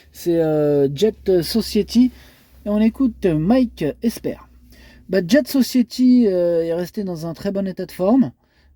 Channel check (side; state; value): both; identical; correlation 1.00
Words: c'est Jet Society, et on écoute Mike Esper. Jet Society est restée dans un très bon état de forme,